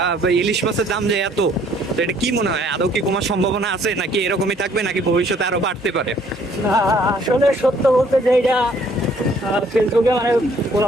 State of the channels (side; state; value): both; normal; correlation 0.61